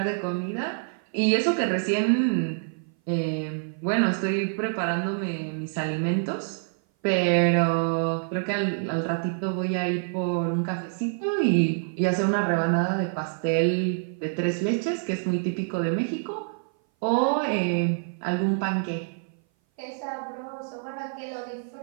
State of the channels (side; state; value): left; silent; 58 dB below the other